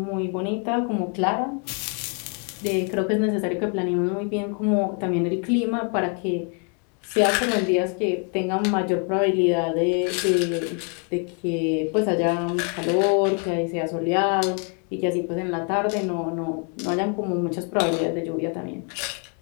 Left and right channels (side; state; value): right; quieter; 39.7 dB